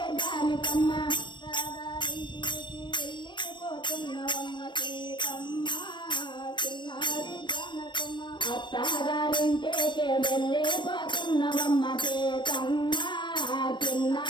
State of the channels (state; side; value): late; right; 0.22 ms